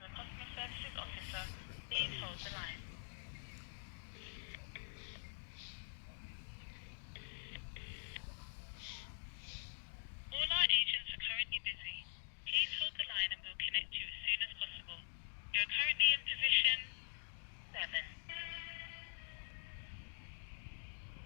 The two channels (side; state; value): right; silent; digital silence